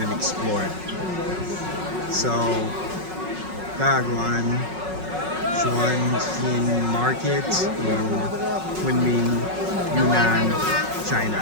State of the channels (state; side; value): late; left; 5.4 ms